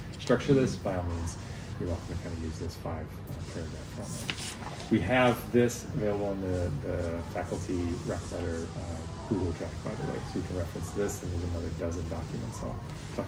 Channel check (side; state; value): both; identical; correlation 1.00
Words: structure this? By all means, you're welcome to kind of use this 5 paragraph format. We have this available in the faculty rec letter Google Drive, by the way, so you can reference this, and there's another dozen documents. I'll